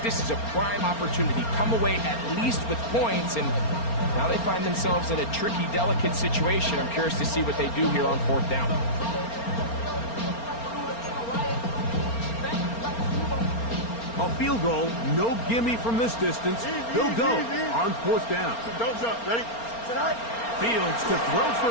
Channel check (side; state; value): right; late; 4.3 ms